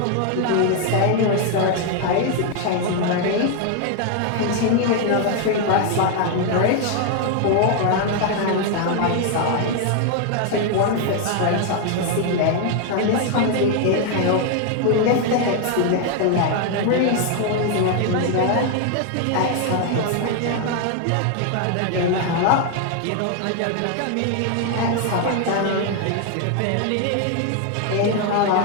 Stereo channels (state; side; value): different; both; correlation 0.01